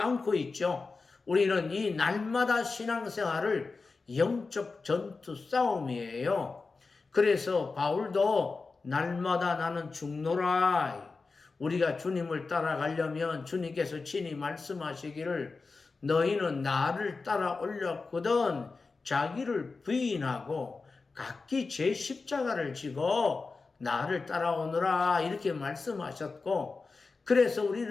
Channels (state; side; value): quieter; right; 4.1 dB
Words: 있죠. 우리는 이 날마다 신앙생활을 영적 전투 싸움이에요. 그래서 바울도 날마다 나는 죽노라. 우리가 주님을 따라가려면 주님께서 친히 말씀하시기를 너희는 나를 따라올렸거든 자기를 부인하고 각기 제 십자가를 지고 나를 따라오너라 이렇게 말씀하셨고 그래서